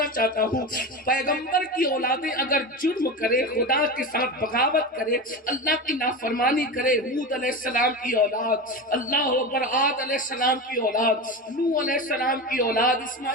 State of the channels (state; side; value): normal; both; correlation 0.24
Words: چاہتا ہوں، پیغمبر کی اولادیں اگر جرم کرے، خدا کے ساتھ بغاوت کرے، اللہ کی نافرمانی کرے، ہود علیہ السلام کی اولاد، اللہ اکبر، عاد علیہ السلام کی اولاد، نوح علیہ السلام کی اولاد،